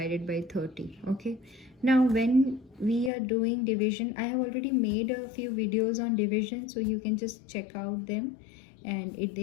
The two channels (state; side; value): drops out; right; at 3.1 s